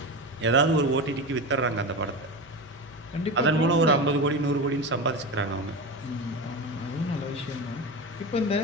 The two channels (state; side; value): normal; both; correlation 0.23